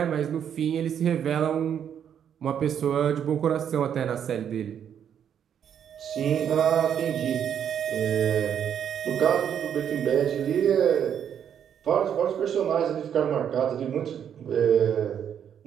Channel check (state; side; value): quieter; left; 8.8 dB